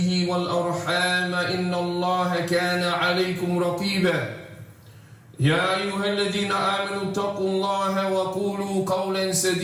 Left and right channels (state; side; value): identical; both; correlation 1.00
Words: والأرحام إن الله كان عليكم رقيبا. يا أيها الذين آمنوا اتقوا الله وقولوا قولا